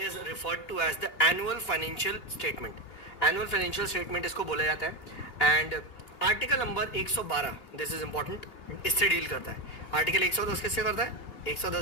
referred to as the annual financial statement. Annual financial statement इसको बोला जाता है। And article number 112, this is important, इससे डील करता है। आर्टिकल 110 किससे करता है?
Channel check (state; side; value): late; right; 2.8 ms